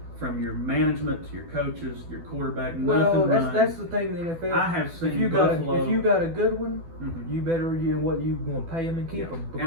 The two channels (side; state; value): left; late; 12 ms